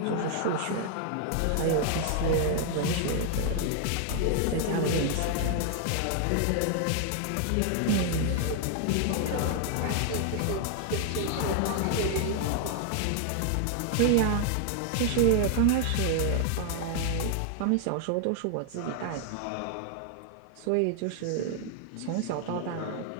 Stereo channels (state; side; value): different; both; correlation 0.00